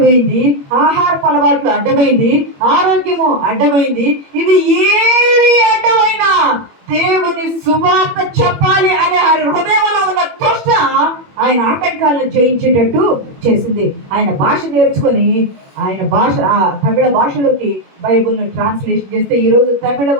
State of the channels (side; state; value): left; late; 21 ms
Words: ఆహారపు అలవాట్లు అడ్డమైంది, ఆరోగ్యము అడ్డమైంది. ఇవి ఏవి అడ్డమైనా దేవుని సువార్త చెప్పాలి అనే హృదయంలో ఉన్న తృష్ణ ఆయన ఆటంకాలను జయించేటట్టు చేసింది. ఆయన భాష నేర్చుకొని ఆయన భాష తమిళ భాషలోకి బైబిల్ను ట్రాన్స్లేషన్ చేస్తే ఈరోజు